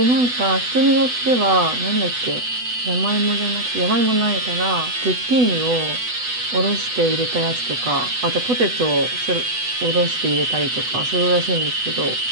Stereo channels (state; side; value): late; left; 8.1 ms